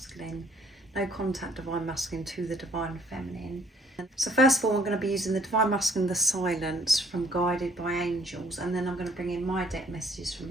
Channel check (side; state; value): both; normal; correlation 0.62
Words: no contact divine masculine to the divine feminine. So first of all, I'm going to be using the divine masculine, the silence from Guided by Angels, and then I'm going to bring in my deck messages from